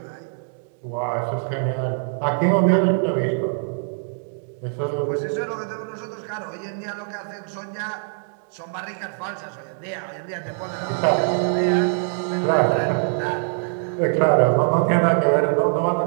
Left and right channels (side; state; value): left; silent; digital silence